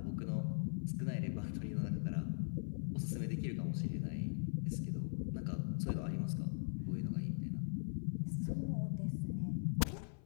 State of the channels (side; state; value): right; silent; 51 dB below the other